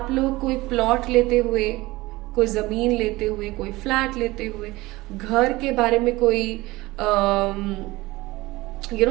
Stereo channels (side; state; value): left; quieter; 20.1 dB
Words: लोग कोई प्लॉट लेते हुए, कोई जमीन लेते हुए, कोई फ्लैट लेते हुए, घर के बारे में कोई